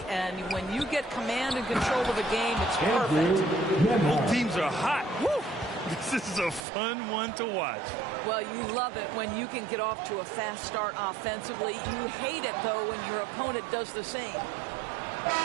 and when you get command and control of the game, it's perfect. Both teams are hot. Woo! This is a fun one to watch. Well, you love it when you can get off to a fast start offensively. You hate it, though, when your opponent does the same.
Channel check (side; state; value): left; drops out; at 6.7 s